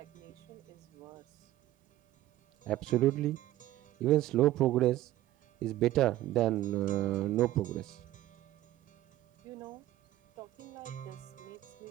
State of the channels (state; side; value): quieter; left; 14.8 dB